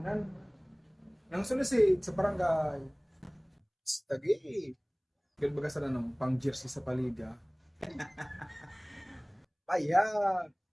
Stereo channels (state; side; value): identical; both; correlation 1.00